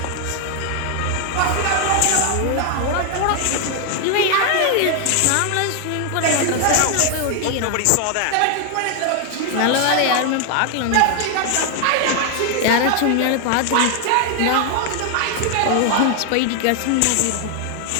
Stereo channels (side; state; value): both; different; correlation 0.00